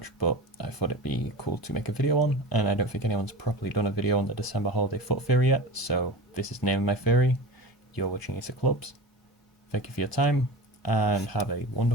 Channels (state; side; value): normal; both; correlation 0.31